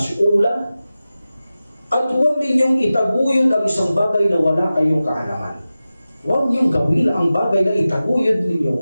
At huwag ninyong itaguyod ang isang bagay na wala kayong kaalaman. Huwag niyong gawin ang bagay na itaguyod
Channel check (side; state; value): both; inverted; correlation -0.95